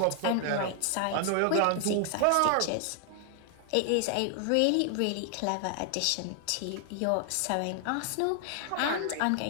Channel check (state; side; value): different; both; correlation 0.00